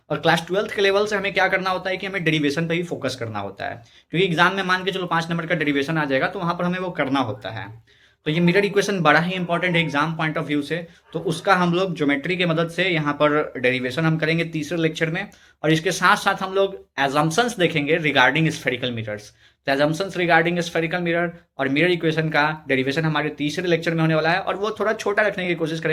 और क्लास 12th के लेवल से हमें क्या करना होता है कि हमें डेरिवेशन पे ही फोकस करना होता है, क्योंकि एग्जाम में मान के चलो 5 नंबर का डेरिवेशन आ जाएगा तो वहां पर हमें वो करना होता है। तो ये मिरर इक्वेशन बड़ा ही इंपॉर्टेंट है एग्जाम पॉइंट ऑफ व्यू से। तो उसका हम लोग ज्योमेट्री की मदद से यहाँ पर डेरिवेशन हम करेंगे तीसरे लेक्चर में। और इसके साथ साथ हम लोग एजम्पशंस देखेंगे रिगार्डिंग स्फेरिकल मिरर्स। तो एजम्पशंस रिगार्डिंग स्फेरिकल मिरर और मिरर इक्वेशन का डेरिवेशन हमारे तीसरे लेक्चर में होने वाला है, और वो थोड़ा छोटा रखने की कोशिश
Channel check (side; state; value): both; identical; correlation 1.00